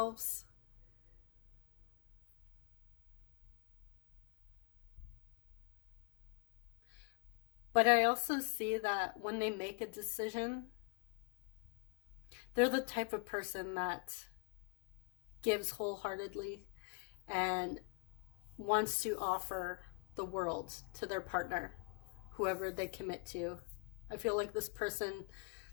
But I also see that when they make a decision, they're the type of person that gives wholeheartedly and wants to offer the world to their partner, whoever they commit to. I feel like this person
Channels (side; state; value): right; quieter; 35.3 dB